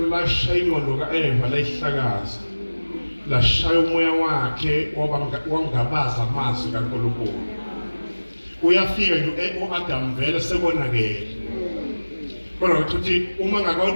lashaya ingqondo kaEva layihlakaza lashaya umoya wakhe wangabaza amazwi kaNkulunkulu uyafika nje uAdam vele sekonakele kodwa ukuthi uma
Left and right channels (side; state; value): both; inverted; correlation -1.00